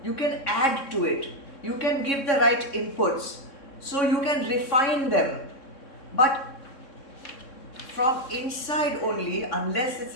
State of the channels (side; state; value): right; late; 3.6 ms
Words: to it. You can give the right inputs. So you can refine them. But from inside only, unless